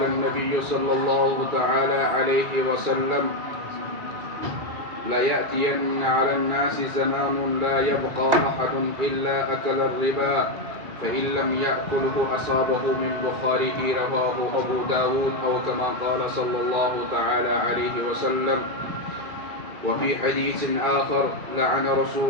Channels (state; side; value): late; left; 2.4 ms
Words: النبي صلى الله تعالى عليه وسلم لا يأتين على الناس زمان لا يبقى أحد إلا أكل الربا فإن لم يأكله أصابه من بخاره رواه أبو داود أو كما قال صلى الله تعالى عليه وسلم وفي حديث آخر لعن